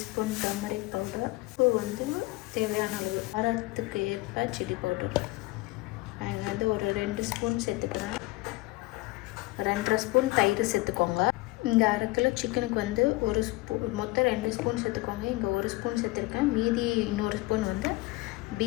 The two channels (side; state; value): right; quieter; 21.3 dB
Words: டர்மரிக் பவுடர், உப்பு வந்து தேவையான அளவு, காரத்துக்கு ஏற்ப சில்லி பவுடர். நான் வந்து ஒரு 2 ஸ்பூன் சேர்த்துக்கிறேன். 2.5 ஸ்பூன் தயிர் சேர்த்துக்கோங்க. இங்கே 1/2 கிலோ சிக்கனுக்கு வந்து 1 ஸ்பூன், மொத்தம் 2 ஸ்பூன் சேர்த்துக்கோங்க. இங்கே 1 ஸ்பூன் சேர்த்துருக்கேன். மீதி இன்னொரு ஸ்பூன் வந்து